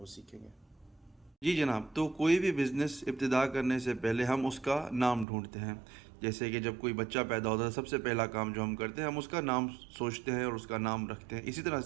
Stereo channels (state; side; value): drops out; left; at 5.2 s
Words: सीखेंगे। जी जनाब, तो कोई भी बिज़नेस इब्तिदा करने से पहले हम उसका नाम ढूँढते हैं। जैसे कि जब कोई बच्चा पैदा होता है, सबसे पहला काम जो हम करते हैं, हम उसका नाम सोचते हैं और उसका नाम रखते हैं। इसी तरह